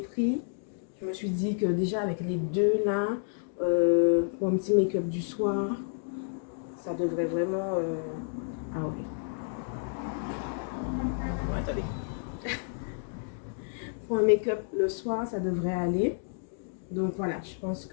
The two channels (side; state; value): right; silent; digital silence